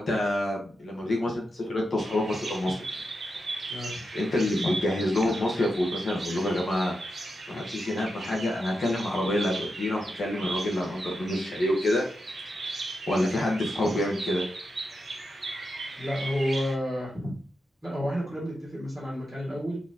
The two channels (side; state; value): both; normal; correlation 0.87